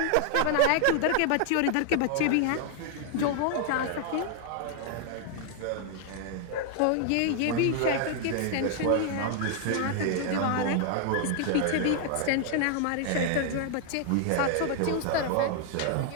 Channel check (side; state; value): both; different; correlation 0.00